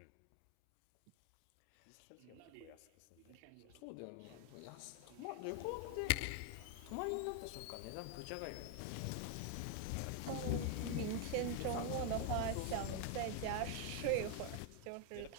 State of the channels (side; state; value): both; different; correlation 0.01